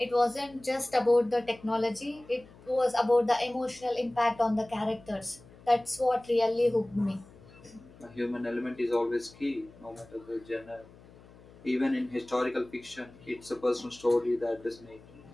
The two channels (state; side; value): noise; left; hum, 23 dB below the sound